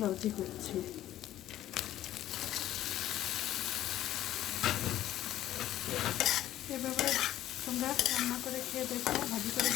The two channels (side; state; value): right; quieter; 13.2 dB